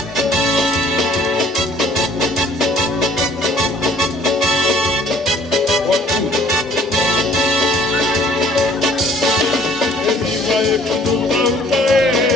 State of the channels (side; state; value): both; normal; correlation 0.56